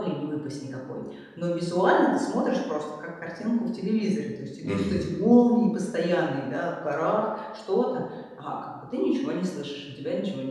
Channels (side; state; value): both; identical; correlation 1.00